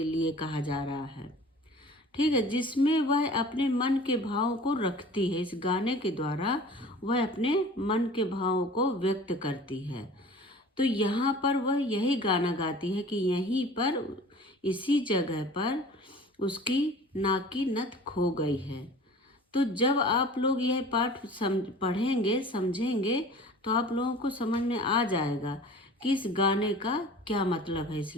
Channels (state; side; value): normal; both; correlation 0.43